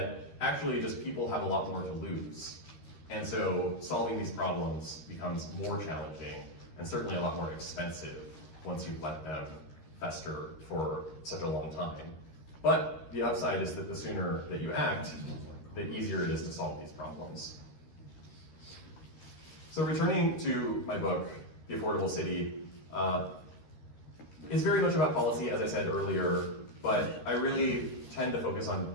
actually just people have a lot more to lose. And so solving these problems becomes more challenging and certainly a lot more expensive once you've let them fester for such a long time. But the upside is that the sooner that you act, the easier it is to solve these problems. So returning to my book, The Affordable City, is very much about policy, as I said earlier, but I really tend to focus on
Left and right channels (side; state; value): right; late; 13 ms